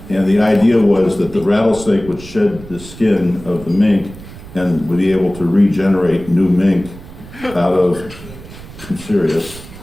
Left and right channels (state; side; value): noise; right; rumble, 16 dB below the sound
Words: the idea was that the rattlesnake would shed the skin of the mink and would be able to regenerate new mink out of, I'm serious.